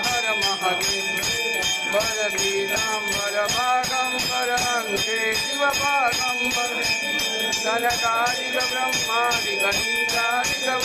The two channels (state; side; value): identical; both; correlation 1.00